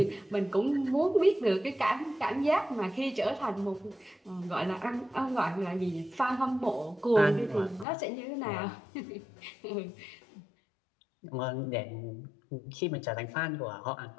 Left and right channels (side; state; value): right; drops out; at 7.9 s